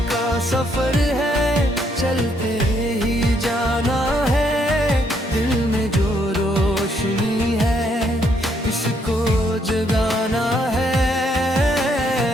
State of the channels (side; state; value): both; normal; correlation 0.72